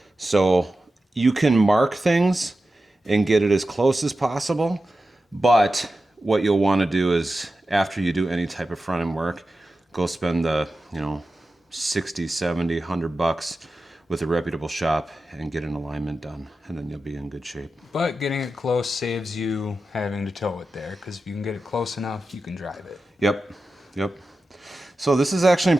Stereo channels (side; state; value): both; normal; correlation 0.92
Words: So you can mark things and get it as close as possible, but what you'll want to do is after you do any type of front end work, go spend the, 60, 70, $100 with a reputable shop and get an alignment done, and then you'll be in good shape. But getting it close saves you having to tow it there, because if you can get it close enough, you can drive it. Yep. So this is actually in